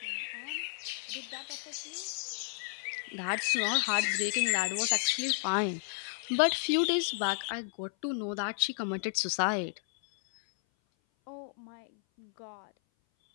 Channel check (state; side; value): silent; right; 56 dB below the other